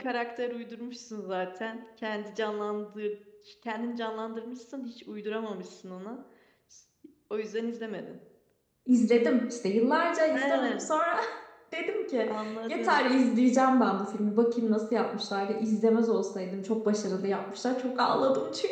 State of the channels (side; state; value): both; identical; correlation 1.00